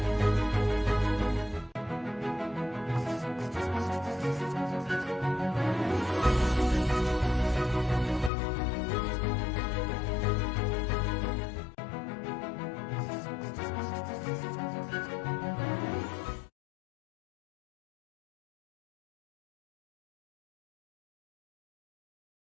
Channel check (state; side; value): drops out; right; at 8.3 s